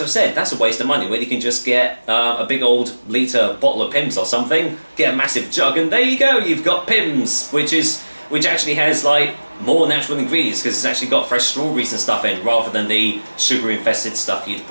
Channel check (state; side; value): inverted; both; correlation -1.00